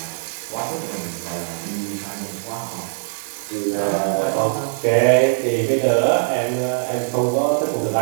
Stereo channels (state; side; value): silent; left; 65 dB below the other